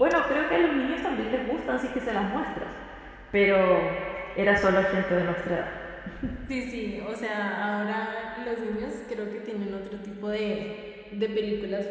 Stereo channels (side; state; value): both; identical; correlation 1.00